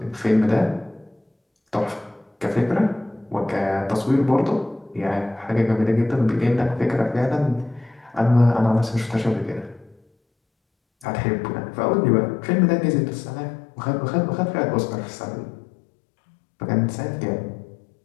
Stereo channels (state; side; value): drops out; right; at 11.1 s